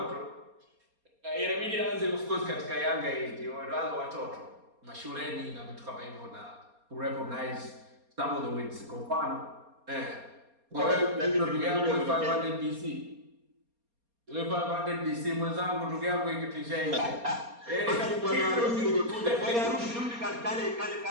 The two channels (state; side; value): late; left; 4.3 ms